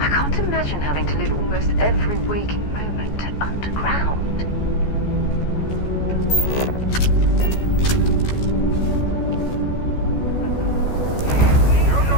I can't imagine having to live almost every waking moment underground. You're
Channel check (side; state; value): right; late; 14 ms